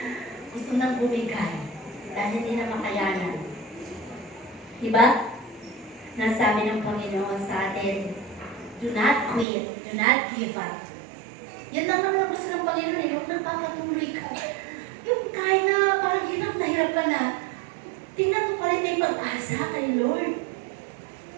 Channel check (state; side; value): drops out; left; at 9.5 s